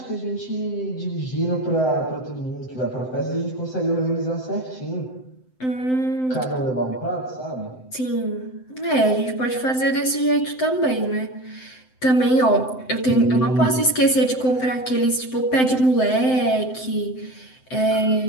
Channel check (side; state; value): right; late; 7.8 ms